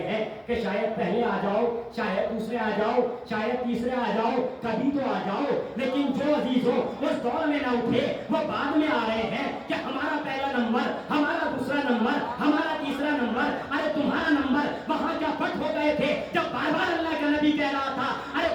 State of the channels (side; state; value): both; identical; correlation 1.00